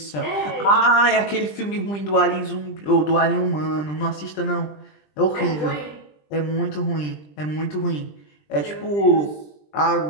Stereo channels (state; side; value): late; right; 20 ms